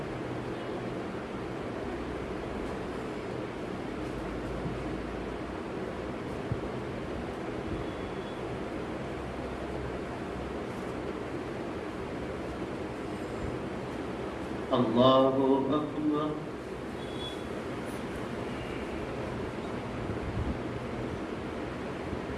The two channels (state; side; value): identical; both; correlation 1.00